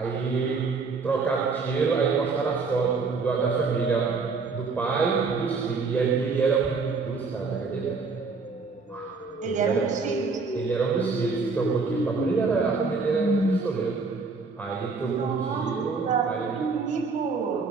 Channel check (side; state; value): left; quieter; 4.4 dB